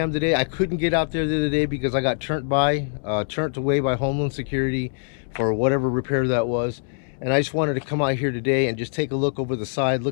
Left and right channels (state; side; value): silent; right; 63 dB below the other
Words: today. I couldn't get out there the other day because I got turned away by Homeland Security for whatever repair that was. And I just wanted to come out here today and just take a look over the side,